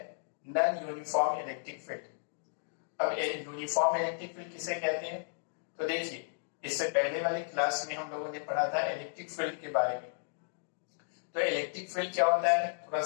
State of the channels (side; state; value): right; silent; digital silence